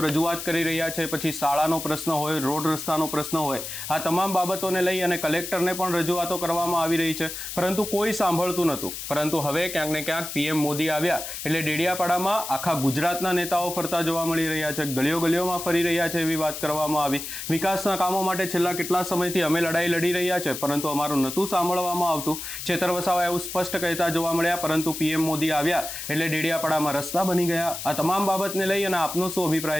રજૂઆત કરી રહ્યા છે. પછી શાળાનો પ્રશ્ન હોય, રોડ રસ્તાનો પ્રશ્ન હોય, આ તમામ બાબતોને લઈ અને કલેક્ટરને પણ રજૂઆતો કરવામાં આવી રહી છે, પરંતુ કોઈ સાંભળતું નહોતું. પરંતુ હવે ક્યાંક ને ક્યાંક પીએમ મોદી આવ્યા એટલે ડેડિયાપાડામાં આખા ગુજરાતના નેતાઓ ફરતા જોવા મળી રહ્યા છે, ગલીઓ ગલીઓમાં ફરી રહ્યા છે એવી વાત કરવામાં આવી. વિકાસના કામો માટે છેલ્લા કેટલા સમયથી અમે લડાઈ લડી રહ્યા છે, પરંતુ અમારું નહોતું સાંભળવામાં આવતું. ચેતર વસાવા એવું સ્પષ્ટ કહેતા જોવા મળ્યા, પરંતુ પીએમ મોદી આવ્યા એટલે ડેડિયાપાડામાં રસ્તા બની ગયા. આ તમામ બાબતને લઈ અને આપનો શું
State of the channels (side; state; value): left; noise; hiss, 7 dB below the sound